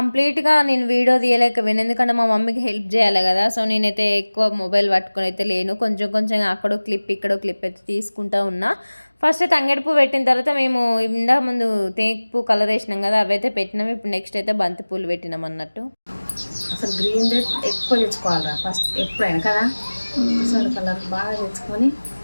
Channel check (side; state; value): both; inverted; correlation -1.00